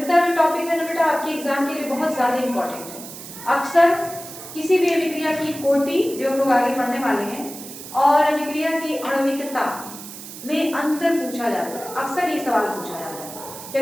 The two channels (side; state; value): right; noise; hiss, 13 dB below the sound